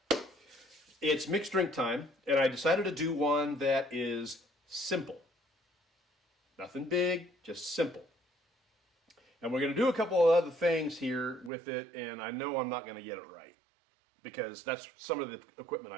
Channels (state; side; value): drops out; left; at 11.5 s